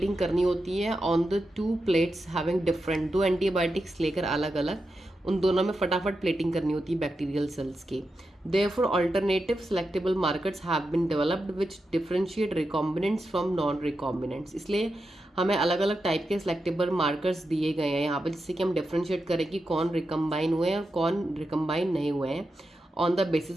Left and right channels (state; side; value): normal; both; correlation 0.88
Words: करनी होती है on the two plates having different, दो एंटीबायोटिक्स लेकर अलग अलग उन दोनों में फटाफट प्लेटिंग करनी होती है बैक्टीरियल सेल्स की। Therefore alternative selectable markers have been developed which differentiate recombinants from non recombinants. इसलिए हमें अलग अलग टाइप के सेलेक्टेबल मार्कर्स दिए गए हैं यहाँ पर, जिससे कि हम डिफरेंशिएट करें कि कौन रिकम्बाइन हुए हैं और कौन रिकम्बाइन नहीं हुए हैं on the